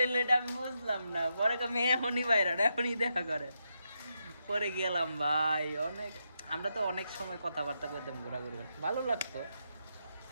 এটা আমি বুঝলাম না। পরে কই মেয়ে এখনই বাইরে, এখনই দেখা করে। পরে গেলাম ভাই, অনেক আমরা তো অনেক সময় কথাবার্তা করতাম, ঘোরাঘুরি ভালো লাগতো।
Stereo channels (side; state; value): both; inverted; correlation -0.83